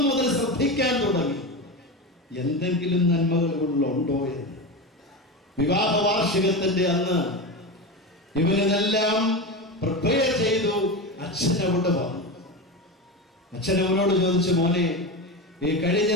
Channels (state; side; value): normal; both; correlation 0.21